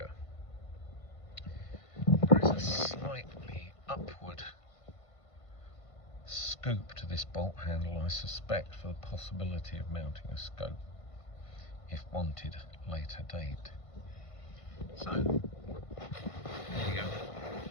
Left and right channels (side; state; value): right; late; 1.5 ms